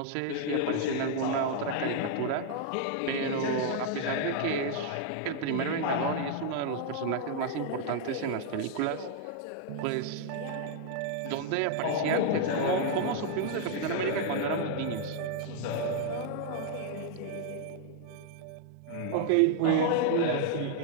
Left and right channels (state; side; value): different; both; correlation 0.00